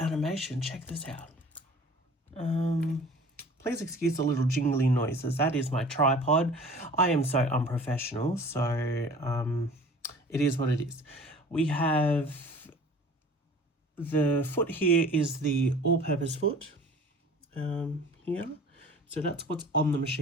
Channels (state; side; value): normal; both; correlation 0.45